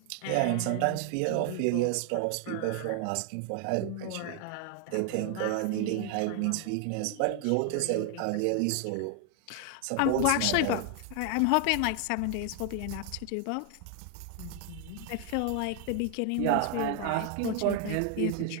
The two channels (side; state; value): both; different; correlation 0.00